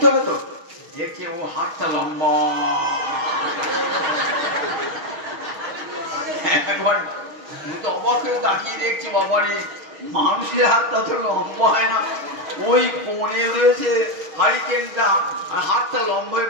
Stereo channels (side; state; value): left; late; 6.4 ms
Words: হবে তো। দেখছে ও হাতটা লম্বা, একবার অবাক হয়ে তাকিয়ে দেখছি, বাবারে মানুষের হাতটা তো লম্বা হয় না, ওই কোণে রয়েছে হারিকেনটা, আর হাতটা লম্বা হয়ে